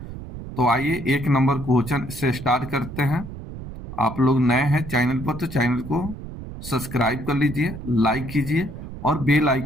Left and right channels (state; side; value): noise; right; rumble, 11 dB below the sound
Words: तो आइए एक नंबर क्वेश्चन से स्टार्ट करते हैं। आप लोग नए हैं चैनल पर तो चैनल को सब्सक्राइब कर लीजिए, लाइक कीजिए और बेल